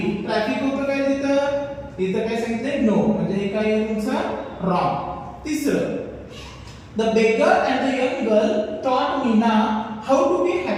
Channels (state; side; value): identical; both; correlation 1.00